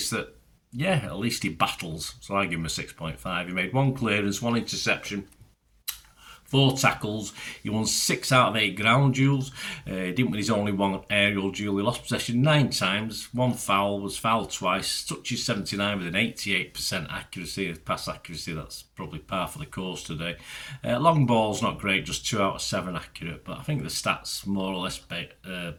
that, yeah, at least he battles. So I give him a 6.5. He made 1 clearance, 1 interception, 4 tackles. He won 6 out of 8 ground duels. He didn't win his only 1 aerial duel. He lost possession 9 times. 1 foul, was fouled twice. Touches 79 with an 88% accuracy, pass accuracy. That's probably par for the course today. Long ball's not great, just 2 out of 7 accurate. But I think the stats more or less back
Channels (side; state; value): both; identical; correlation 1.00